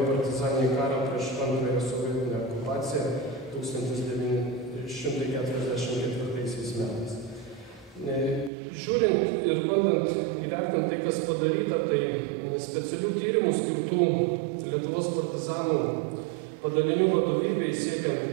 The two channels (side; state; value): left; drops out; at 8.5 s